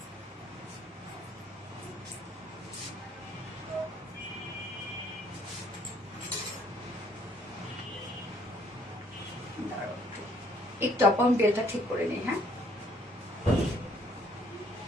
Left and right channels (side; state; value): both; normal; correlation 0.63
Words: একটু আপন বেলটা ঠিক করে নিই। হ্যাঁ